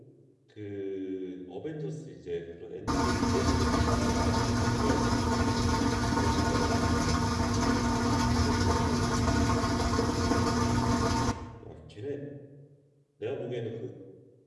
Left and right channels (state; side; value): identical; both; correlation 1.00